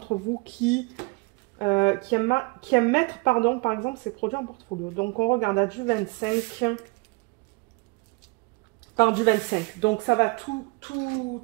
vous qui aiment mettre par exemple ces produits en portfolio. Donc on regarde à du 25 par du 25. Donc ça va tout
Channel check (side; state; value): left; quieter; 27.3 dB